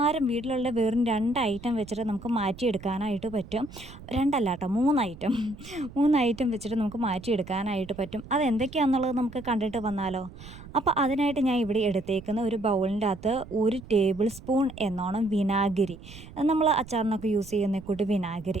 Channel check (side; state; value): right; noise; rumble, 17 dB below the sound